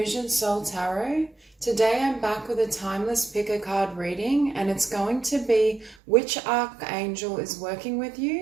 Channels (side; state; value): left; drops out; at 6.0 s